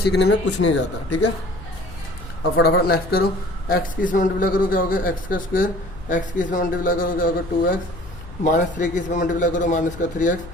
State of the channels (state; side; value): noise; left; hum, 16 dB below the sound